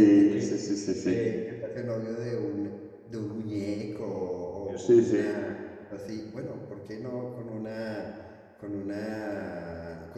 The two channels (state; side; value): identical; both; correlation 1.00